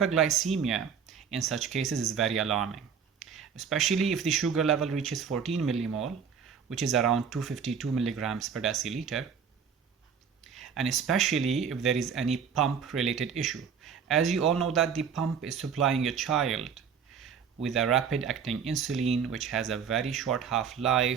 in such cases is very alarming, especially if the sugar level reaches 14 millimole, which is around 252 milligrams per deciliter, and especially if there is any pump related issue. As you all know that the pump is supplying a child with a rapid acting insulin which has a very short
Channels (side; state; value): left; quieter; 6.9 dB